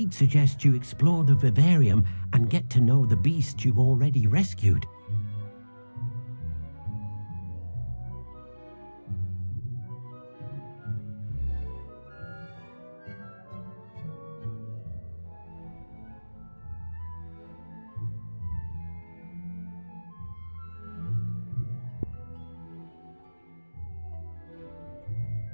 suggests you explore the vivarium and get to know the beasts you've already rescued.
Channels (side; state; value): both; inverted; correlation -1.00